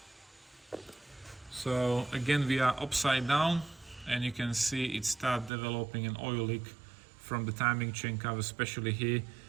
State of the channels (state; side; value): drops out; left; at 5.5 s